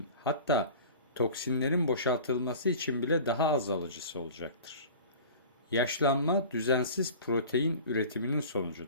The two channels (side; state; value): both; inverted; correlation -0.39